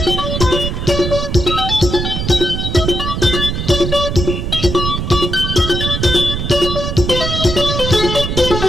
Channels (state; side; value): noise; right; rumble, 3 dB below the sound